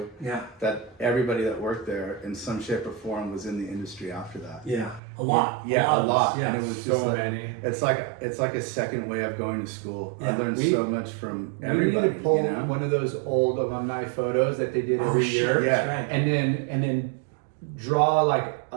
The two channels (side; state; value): left; drops out; at 5.0 s